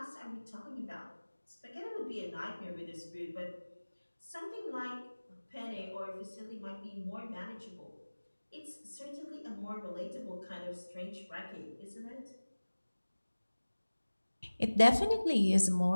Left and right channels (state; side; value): inverted; both; correlation -1.00